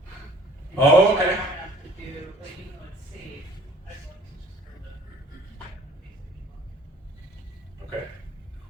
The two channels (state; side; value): normal; both; correlation 0.53